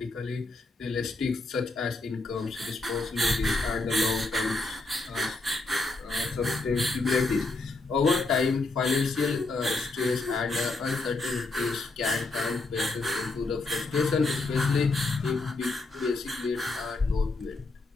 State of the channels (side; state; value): right; quieter; 3.3 dB